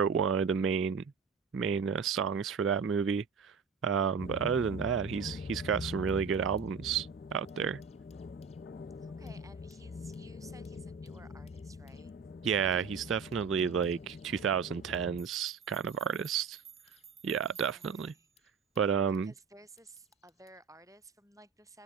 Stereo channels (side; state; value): left; quieter; 6.1 dB